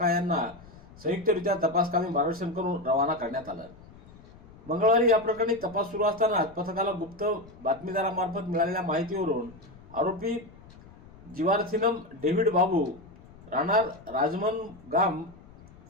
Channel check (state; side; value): noise; left; rumble, 22 dB below the sound